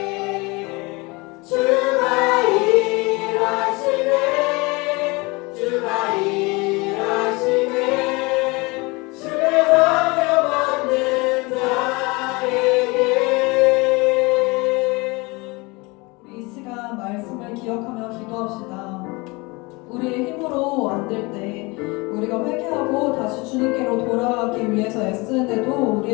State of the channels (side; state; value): right; quieter; 25.6 dB